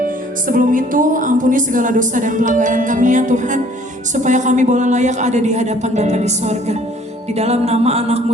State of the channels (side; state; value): both; normal; correlation 0.57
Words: Sebelum itu, ampuni segala dosa dan pelanggaran kami ya Tuhan, supaya kami boleh layak ada di hadapan Bapa di sorga. Di dalam nama